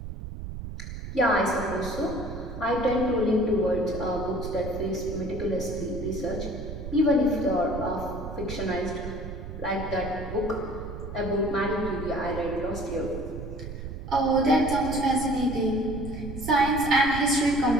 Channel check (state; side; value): noise; right; rumble, 9 dB below the sound